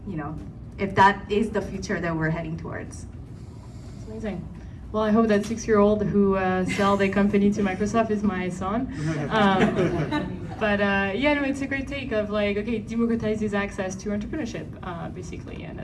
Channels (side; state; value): both; identical; correlation 1.00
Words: that is the future that we're heading towards. Amazing. Well, I hope that 6-year-old who sell their company to Microsoft is my son. But yeah, no, it's a great take of like, okay, democratizes access to entrepreneurship, basically, and